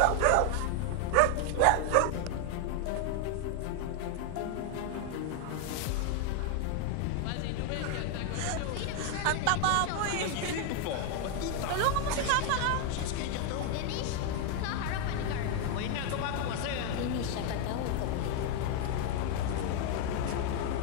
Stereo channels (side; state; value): both; different; correlation 0.00